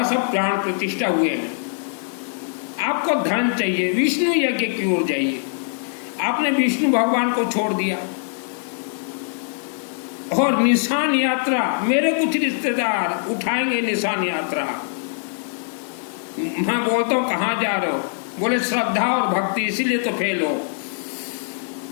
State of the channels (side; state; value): right; silent; digital silence